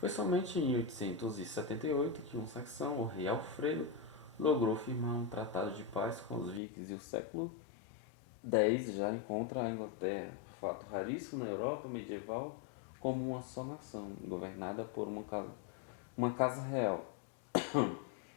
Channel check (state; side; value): drops out; right; at 6.6 s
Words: somente em 878 que um saxão, o rei Alfredo, logrou firmar um tratado de paz com os vikings e o século X já encontra a Inglaterra, fato raríssimo na Europa medieval, como uma só nação, governada por uma casa real,